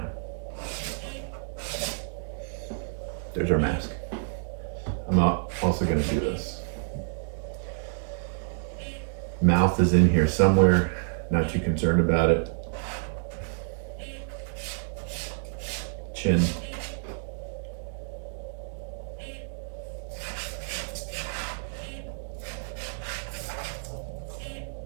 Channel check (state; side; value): silent; left; digital silence